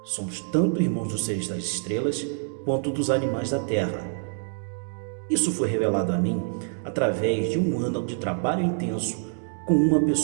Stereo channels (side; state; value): left; silent; 61 dB below the other